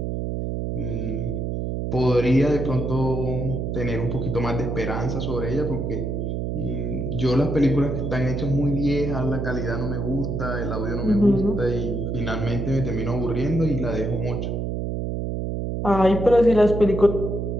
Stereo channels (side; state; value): right; noise; hum, 2 dB below the sound